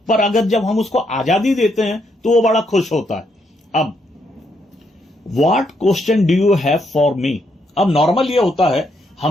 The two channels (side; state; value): both; normal; correlation 0.76